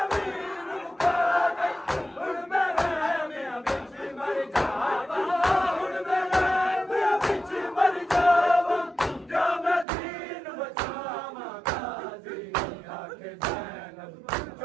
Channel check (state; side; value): drops out; left; at 9.9 s